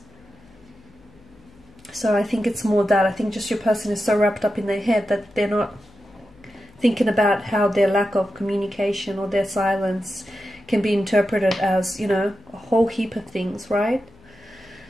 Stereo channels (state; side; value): noise; left; hum, 27 dB below the sound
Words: So I think it's more that. I think just your person is so wrapped up in their head that they're not thinking about how their lack of communication or their silence can be interpreted as, you know, a whole heap of things, right?